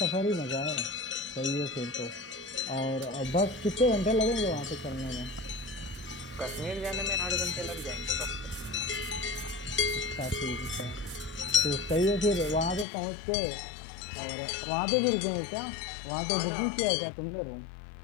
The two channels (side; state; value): right; drops out; at 12.9 s